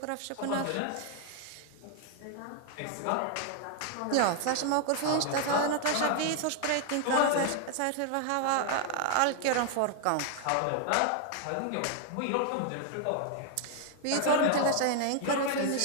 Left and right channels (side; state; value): both; different; correlation 0.00